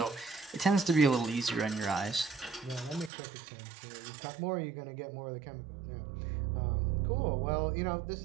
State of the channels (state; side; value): drops out; left; at 3.1 s